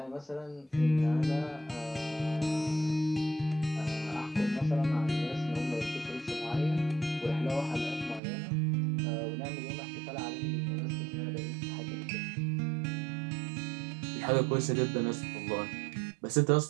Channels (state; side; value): drops out; left; at 8.2 s